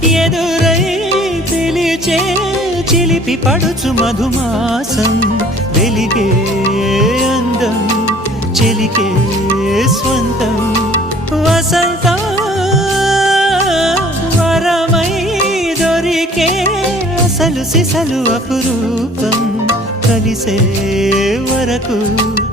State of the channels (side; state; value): both; normal; correlation 0.52